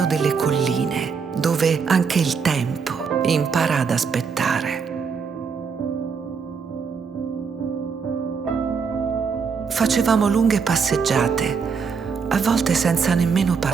delle colline, dove anche il tempo impara ad aspettare. Facevamo lunghe passeggiate, a volte senza nemmeno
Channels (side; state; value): left; quieter; 5.7 dB